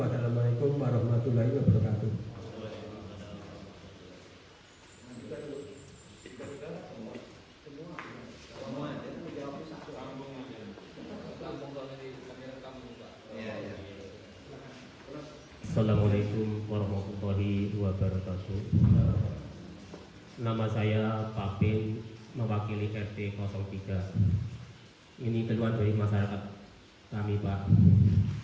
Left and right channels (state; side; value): identical; both; correlation 1.00